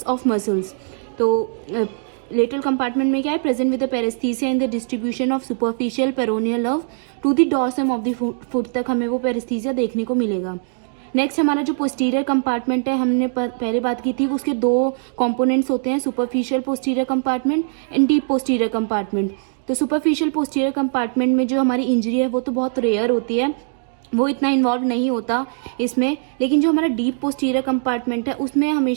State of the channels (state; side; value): silent; left; digital silence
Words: ऑफ मसल्स. तो लेटरल कंपार्टमेंट में क्या है, present with the paraesthesia in the distribution of superficial peroneal nerve to the dorsum of the foot तक हमें वो पेरेस्थीसिया देखने को मिलेगा. नेक्स्ट हमारा जो पोस्टीरियर कंपार्टमेंट है, हमने पहले बात की थी, उसके 2 कंपोनेंट्स होते हैं, superficial posterior compartment and deep posterior compartment. तो सुपरफिशियल पोस्टीरियर कंपार्टमेंट में जो हमारी इंजरी है वो तो बहुत रेयर होती है, वो इतना इन्वॉल्व नहीं होता इसमें. लेकिन जो हमारा डीप पोस्टीरियर कंपार्टमेंट है उसमें